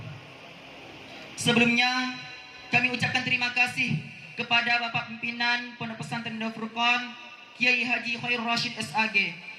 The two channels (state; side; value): identical; both; correlation 1.00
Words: Sebelumnya kami ucapkan terima kasih kepada Bapak Pimpinan Pondok Pesantren Darul Furqan Kiai Haji Khairul Rasid SAG